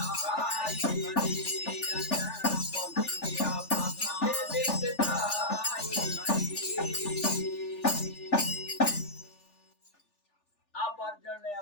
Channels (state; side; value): late; right; 3.4 ms